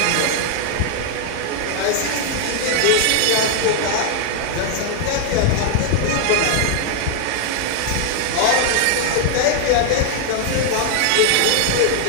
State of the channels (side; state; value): both; different; correlation 0.00